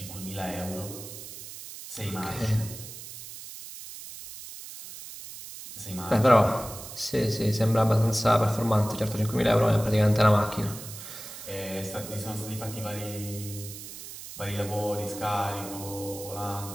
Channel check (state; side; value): noise; right; hiss, 12 dB below the sound